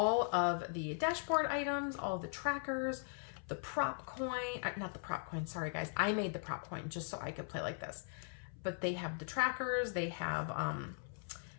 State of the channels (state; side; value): silent; right; 51 dB below the other